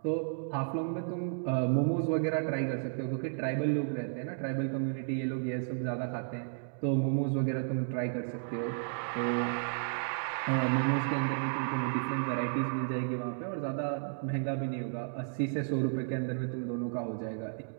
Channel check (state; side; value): silent; left; digital silence